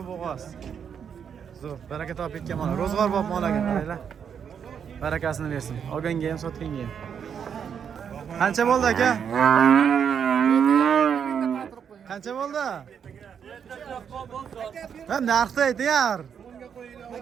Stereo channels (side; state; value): left; quieter; 7.6 dB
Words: bo'g'oz. Zo'r, baraka topib ketgan mana. Ro'zg'or bo'lib molaga qaranglar. Barakasini bersin. Olganga ham, sotganga ham. Qancha bo'ldi aka? Qancha bo'ldi? Ha, narxni ayting.